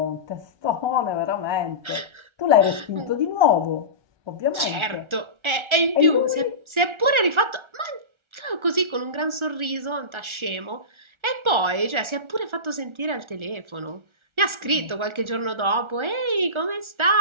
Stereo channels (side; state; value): left; late; 1.4 ms